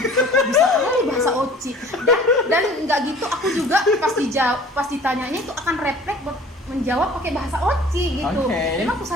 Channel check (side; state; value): both; normal; correlation 0.48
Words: bisa kali bahasa oci dan nggak gitu, aku juga pas ditanyanya itu akan refleks menjawab pakai bahasa oci gitu. Memang aku